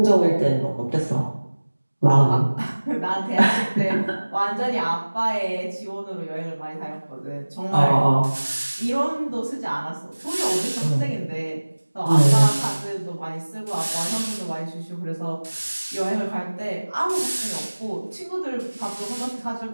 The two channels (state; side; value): inverted; both; correlation -1.00